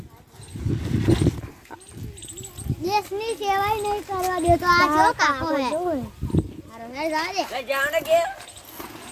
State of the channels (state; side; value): identical; both; correlation 1.00